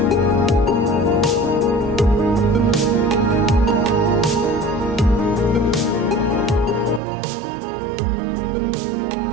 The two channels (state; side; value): drops out; left; at 7.0 s